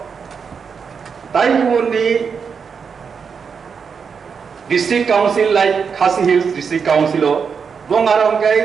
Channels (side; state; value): left; quieter; 6.1 dB